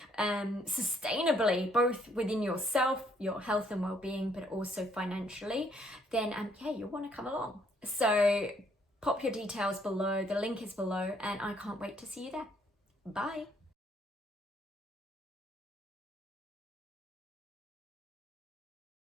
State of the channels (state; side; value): normal; both; correlation 0.67